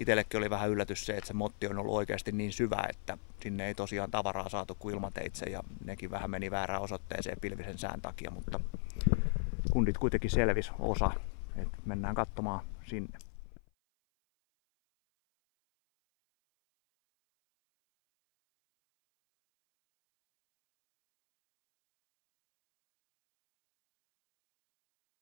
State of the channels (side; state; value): right; silent; 54 dB below the other